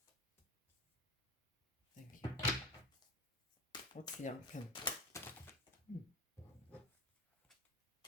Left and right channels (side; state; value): both; normal; correlation 0.29